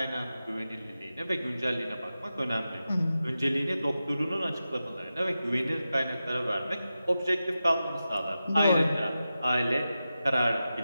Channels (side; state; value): both; inverted; correlation -0.92